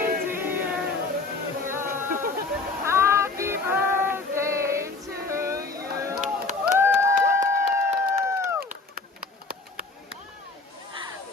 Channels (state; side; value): quieter; right; 3.7 dB